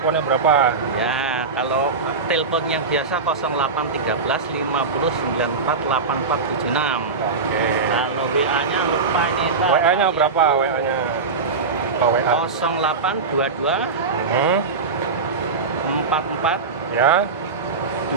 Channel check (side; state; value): left; quieter; 4.4 dB